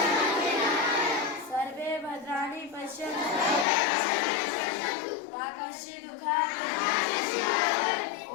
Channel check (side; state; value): right; drops out; at 3.7 s